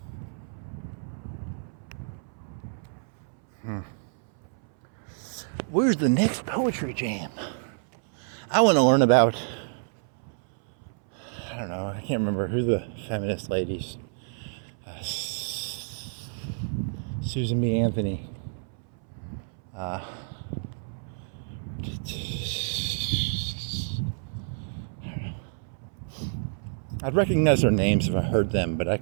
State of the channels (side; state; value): left; silent; 59 dB below the other